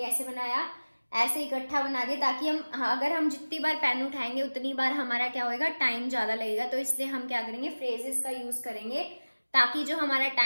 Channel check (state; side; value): inverted; both; correlation -1.00